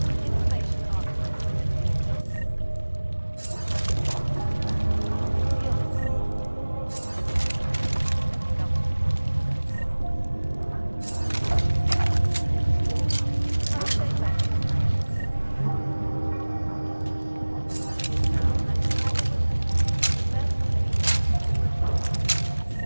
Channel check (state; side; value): inverted; both; correlation -1.00